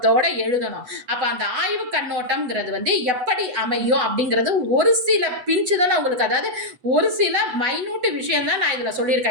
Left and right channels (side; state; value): left; late; 8.1 ms